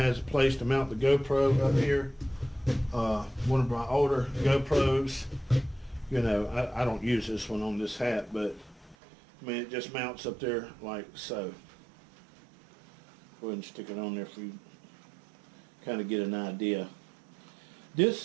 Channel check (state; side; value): drops out; left; at 9.0 s